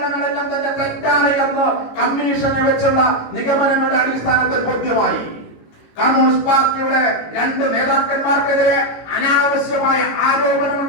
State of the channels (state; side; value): late; right; 18 ms